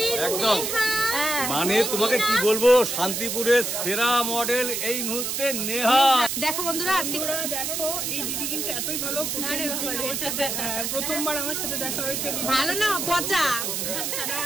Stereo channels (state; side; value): noise; right; hiss, 2 dB below the sound